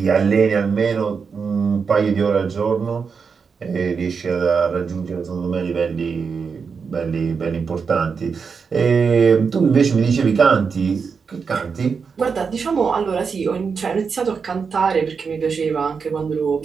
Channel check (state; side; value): quieter; left; 5.6 dB